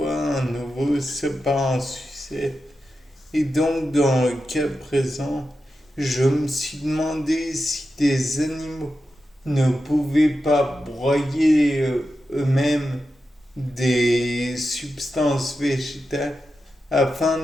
un nouveau C'est pas un succès. Et donc dans le cas présent, je me suis demandé si des animaux ne pouvaient pas broyer eux-mêmes des substances végétales afin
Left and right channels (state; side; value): normal; both; correlation 0.90